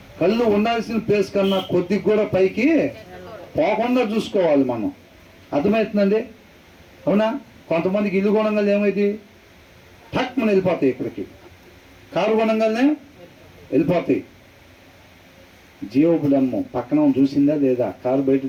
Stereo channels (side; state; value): both; identical; correlation 1.00